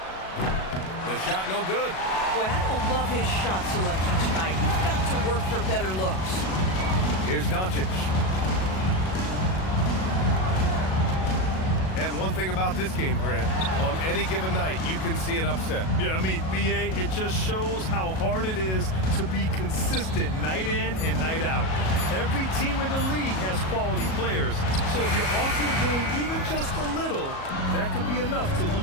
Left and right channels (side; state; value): right; late; 37 ms